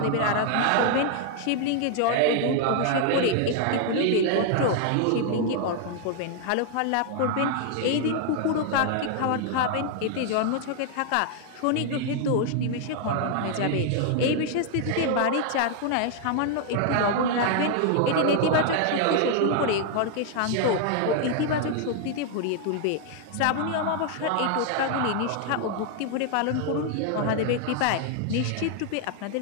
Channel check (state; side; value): different; both; correlation 0.00